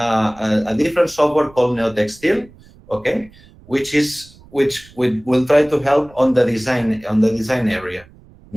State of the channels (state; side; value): noise; right; rumble, 25 dB below the sound